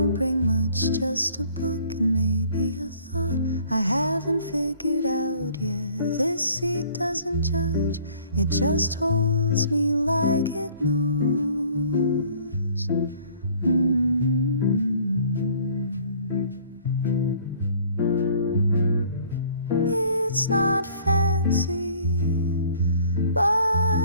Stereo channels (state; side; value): inverted; both; correlation -0.55